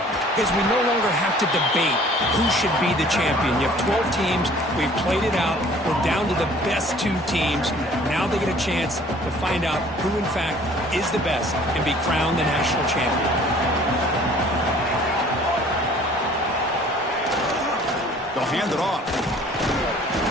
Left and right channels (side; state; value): both; normal; correlation 0.53